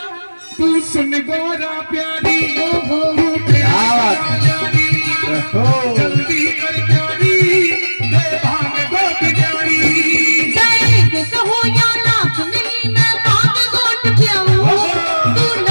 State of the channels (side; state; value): both; inverted; correlation -1.00